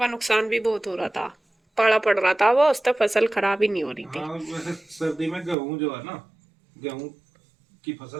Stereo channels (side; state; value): left; drops out; at 5.6 s